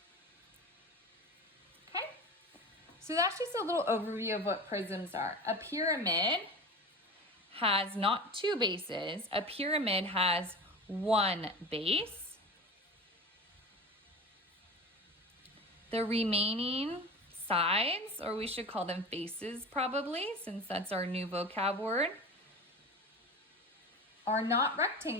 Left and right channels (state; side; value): normal; both; correlation 0.31